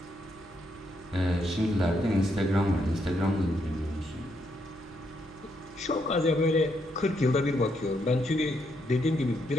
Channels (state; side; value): normal; both; correlation 0.77